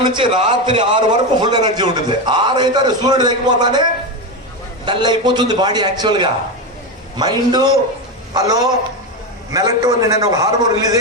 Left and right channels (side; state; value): both; normal; correlation 0.14